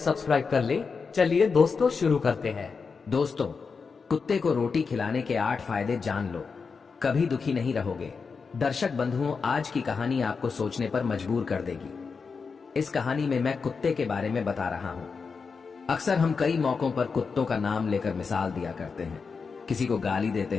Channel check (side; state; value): right; quieter; 5.2 dB